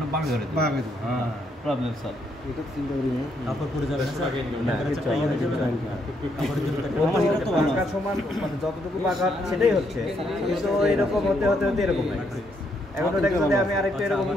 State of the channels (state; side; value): normal; both; correlation 0.75